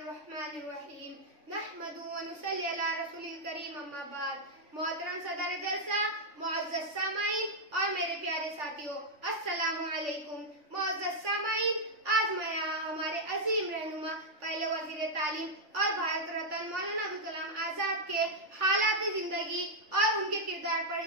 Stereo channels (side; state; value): left; late; 3.4 ms